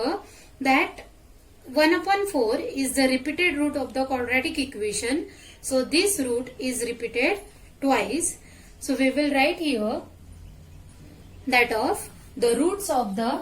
that 1 upon 4 is the repeated root of the quadratic equation. So this root is repeated twice. So we will write here that of the roots of the,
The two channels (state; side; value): identical; both; correlation 1.00